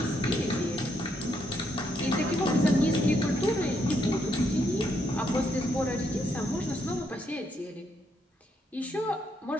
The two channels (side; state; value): both; normal; correlation 0.76